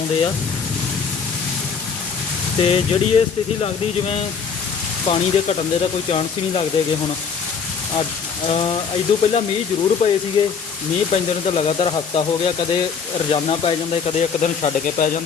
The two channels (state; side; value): quieter; right; 6.3 dB